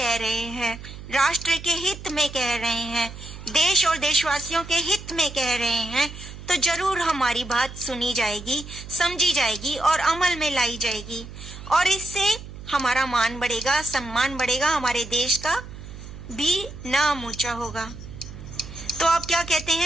रहे हैं, राष्ट्र के हित में कह रहे हैं, देश और देशवासियों के हित में कह रहे हैं, तो जरूर हमारी बात सुनी जाएगी, समझी जाएगी और अमल में लाई जाएगी, और इससे हमारा मान बढ़ेगा, सम्मान बढ़ेगा, हमारे देश का भी नाम ऊंचा होगा। तो आप क्या कहते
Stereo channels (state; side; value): noise; right; hum, 13 dB below the sound